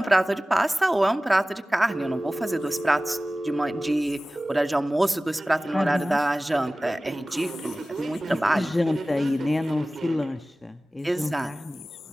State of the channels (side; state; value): both; normal; correlation 0.97